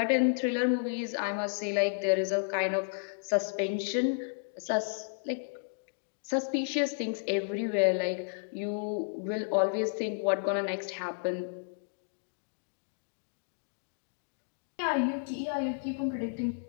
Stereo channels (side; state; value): right; silent; digital silence